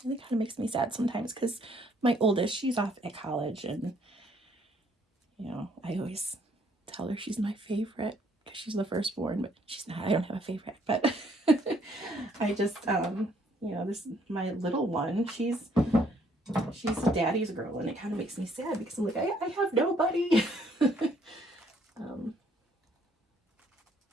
and it kind of makes me sad sometimes, because my oldest, she's off at college, and you know, I always tell her she's my favorite because she's the firstborn, but she's not. I don't have a favorite, but I just, you know, my little one, she's a daddy's girl, and it kind of makes me sad because I'm like, I have nobody.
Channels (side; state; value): both; normal; correlation 0.66